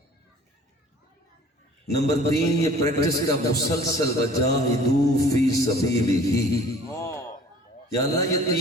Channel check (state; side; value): normal; both; correlation 0.49